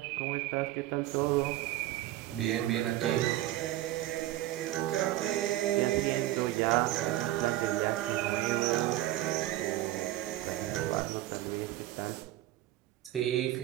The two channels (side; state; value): left; quieter; 15.0 dB